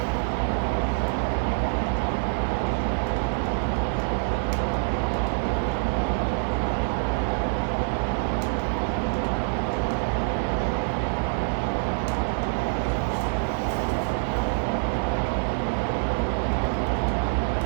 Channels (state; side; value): silent; left; digital silence